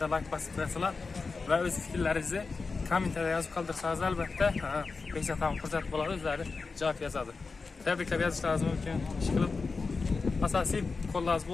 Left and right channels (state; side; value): quieter; right; 4.3 dB